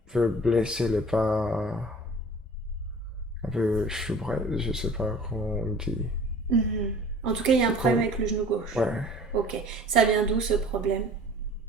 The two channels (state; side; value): normal; both; correlation 0.46